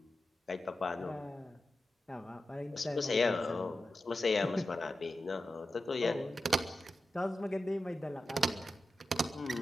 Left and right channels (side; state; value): both; normal; correlation 0.92